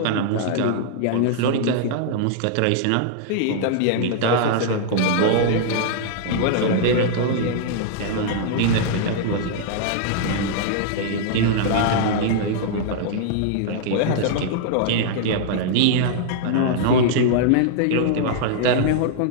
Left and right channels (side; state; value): both; different; correlation -0.01